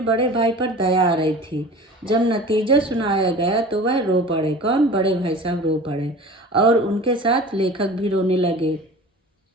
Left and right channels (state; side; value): normal; both; correlation 0.39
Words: बड़े भाई पर दया आ रही थी। जब नतीजा सुनाया गया तो वह रो पड़े। कौन, बड़े भाई साहब रो पड़े और उनके साथ लेखक भी रोने लगे।